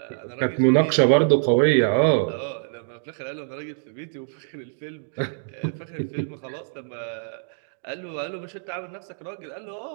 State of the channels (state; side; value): silent; left; digital silence